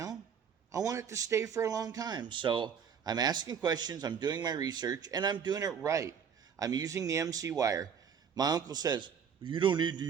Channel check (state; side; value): quieter; left; 7.3 dB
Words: I want it to stay for a long time. So I'm asking questions, I'm doing my research, and I'm doing it right. I'm using the MC wire. My uncle says, you don't need to